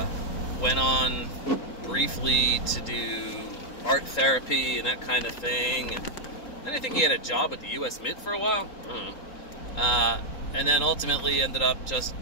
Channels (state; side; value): late; right; 3.8 ms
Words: went on briefly to do art therapy and that kind of thing, and I think he had a job at the U.S. Mint for a while. I don't know. And then ultimately ended up just